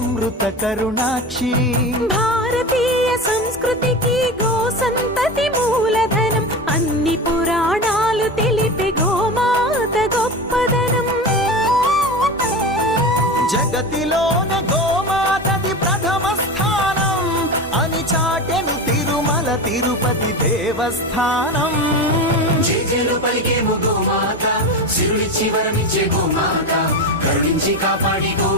करुणाक्षी भारतीय संस्कृतिकी गो संतति मूलधनं अन्नि पुराणालु तेलिपे गोमात गोप्पदनं जगतिलोने गोमातदि प्रथम स्थानं अनि चाटेनु तिरुमल तिरुपति देवस्थानं జేజేలు పలికేము గోమాత సిరులిచ్చి వరమిచ్చే గోమాత కరుణించి కాపాడి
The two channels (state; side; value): normal; both; correlation 0.25